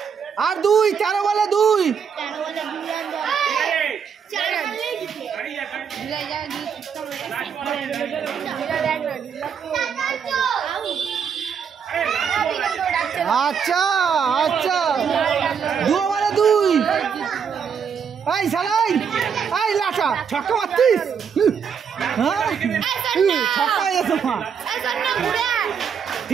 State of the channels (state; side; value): quieter; left; 7.0 dB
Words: আর 2 13 বলে 2। আচ্ছা 2 বলে 2। এই সালাই এই লাটা ছক্কা মারছিস। হ্যাঁ ছক্কা এসো মা।